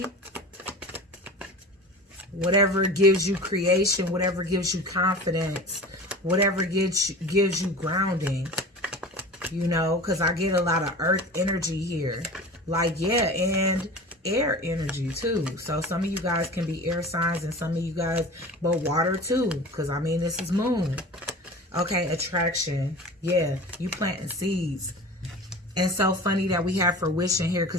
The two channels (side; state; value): both; normal; correlation 0.37